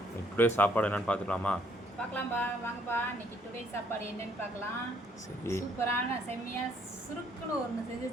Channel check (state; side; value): normal; both; correlation 0.67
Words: டுடே சாப்பாடு என்னன்னு பார்த்துக்கலாமா? பார்க்கலாம்ப்பா, வாங்கப்பா. இன்னைக்கு டுடே சாப்பாடு என்னன்னு பார்க்கலாம். சரி, சூப்பரான செம்மையா சுருக்குன்னு ஒன்று செஞ்சு